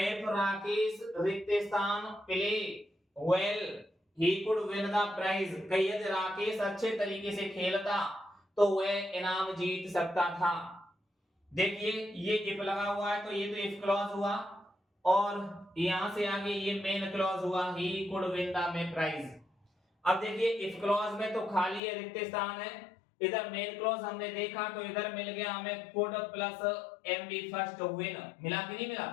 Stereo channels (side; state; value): right; drops out; at 21.8 s